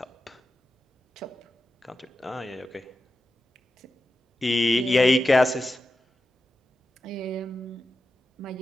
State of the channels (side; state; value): both; normal; correlation 0.91